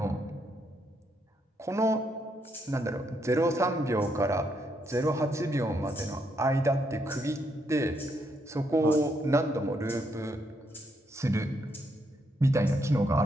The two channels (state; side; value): normal; both; correlation 0.76